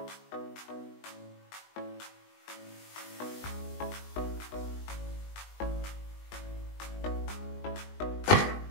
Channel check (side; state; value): right; late; 20 ms